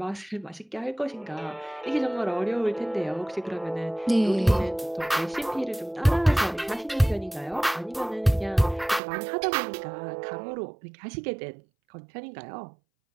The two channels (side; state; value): left; drops out; at 9.0 s